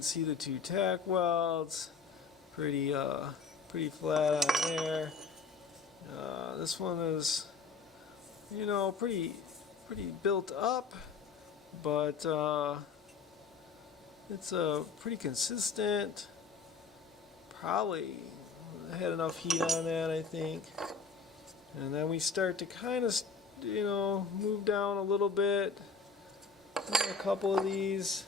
see the two tack welds. Pretty flat on there. This one is, pretty built up, but it's pretty consistent. Probably had enough heat on that, I think. And then we start to kind of, move down a little bit. A couple of these.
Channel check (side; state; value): right; quieter; 4.9 dB